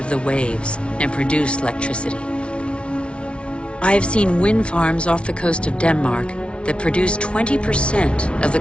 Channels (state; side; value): late; right; 0.059 ms